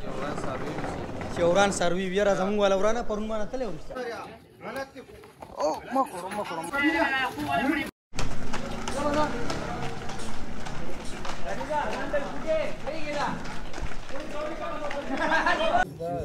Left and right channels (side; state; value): both; identical; correlation 1.00